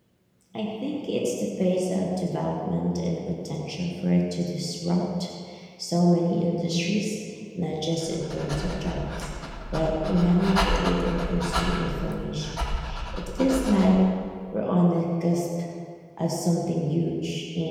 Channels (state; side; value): identical; both; correlation 1.00